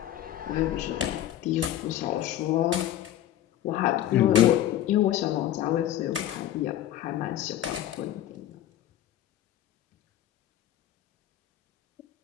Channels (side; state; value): right; quieter; 12.3 dB